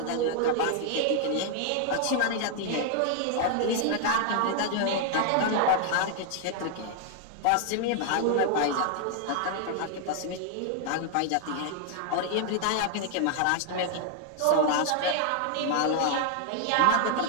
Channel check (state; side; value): different; both; correlation 0.00